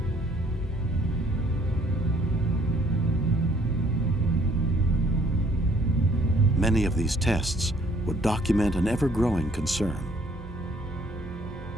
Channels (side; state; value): both; normal; correlation 0.62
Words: Many of these tests would document an ever-growing concern.